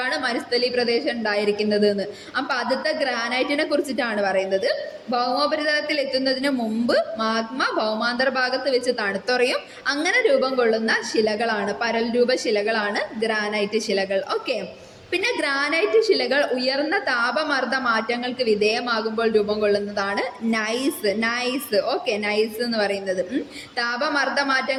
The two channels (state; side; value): identical; both; correlation 1.00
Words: മരുസ്ഥലി പ്രദേശം ഉണ്ടായിരിക്കുന്നത് എന്ന്. അപ്പൊ ആദ്യത്തെ ഗ്രാനൈറ്റിനെ കുറിച്ചിട്ടാണ് പറയുന്നത്. ഭൗമോപരിതലത്തിൽ എത്തുന്നതിന് മുമ്പ് മാഗ്മ ഭൗമാന്തർ ഭാഗത്ത് വെച്ച് തണുത്തുറയും. അങ്ങനെ രൂപം കൊള്ളുന്ന ശിലകളാണ്, പരൽ രൂപ ശിലകളാണ് ഗ്രാനൈറ്റ് ശിലകൾ. ഓക്കെ. പിന്നെ ഗ്രാനൈറ്റ് ശിലകൾ ഉയർന്ന താപമർദ്ദ മാറ്റങ്ങൾക്ക് വിധേയമാകുമ്പോൾ രൂപം കൊള്ളുന്നതാണ് നൈസ്. ഓക്കെ, നൈസ് എന്ന് പറയുന്നത് താപമർദ്ദ